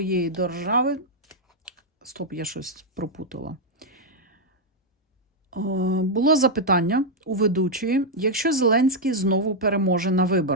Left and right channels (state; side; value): normal; both; correlation -0.02